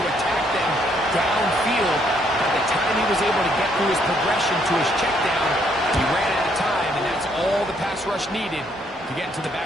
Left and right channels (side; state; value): both; normal; correlation 0.69